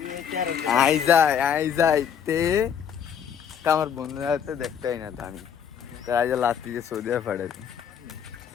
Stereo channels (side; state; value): right; quieter; 8.1 dB